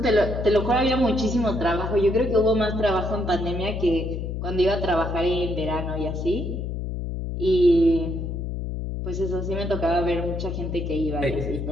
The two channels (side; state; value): left; noise; hum, 4 dB below the sound